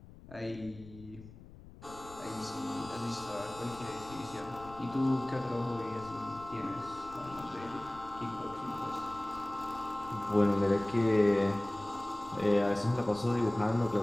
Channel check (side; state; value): left; noise; rumble, 18 dB below the sound